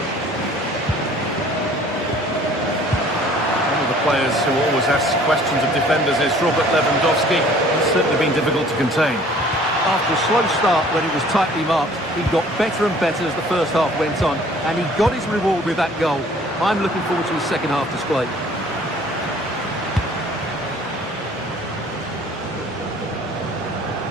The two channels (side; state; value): both; normal; correlation 0.53